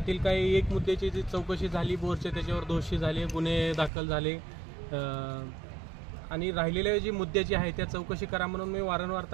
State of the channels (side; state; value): left; drops out; at 3.9 s